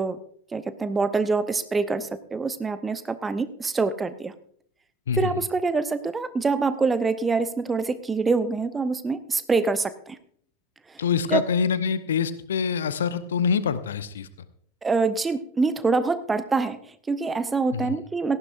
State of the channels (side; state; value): both; normal; correlation 0.48